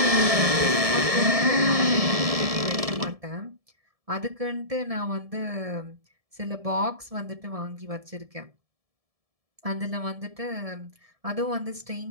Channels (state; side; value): late; left; 1.7 ms